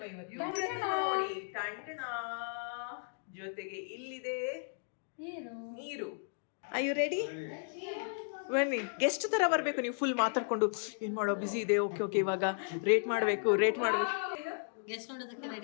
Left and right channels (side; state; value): right; silent; digital silence